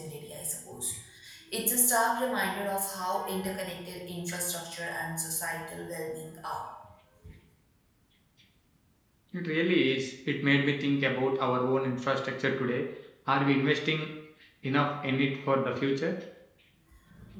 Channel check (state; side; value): identical; both; correlation 1.00